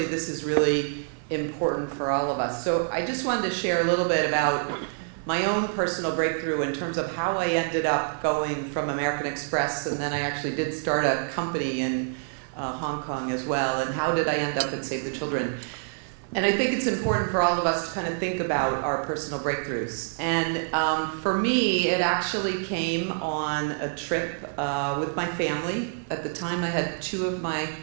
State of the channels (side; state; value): left; silent; 60 dB below the other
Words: this is really important for all of us. So I just wanted to share a little bit about my own personal breakthrough in terms of how I ended up going from American Express, and then I actually did start a company in Hong Kong as well, and how did I end up at Save the Children. And I think it's important for all of us to kind of think about our personal breakthroughs. And for me, it actually came on a trip with my family. At the time, I had 2 of my